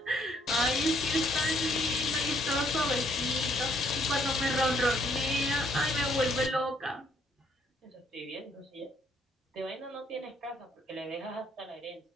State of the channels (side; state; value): both; normal; correlation 0.67